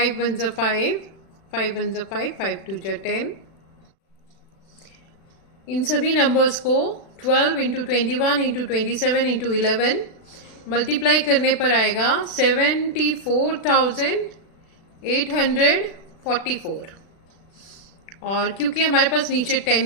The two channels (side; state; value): right; late; 36 ms